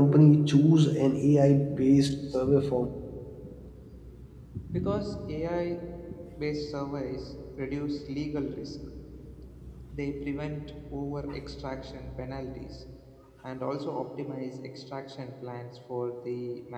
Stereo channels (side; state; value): both; identical; correlation 1.00